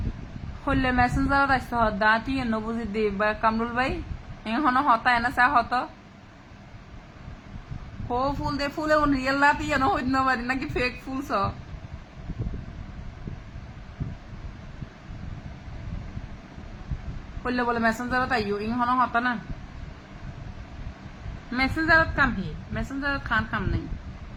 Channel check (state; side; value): identical; both; correlation 1.00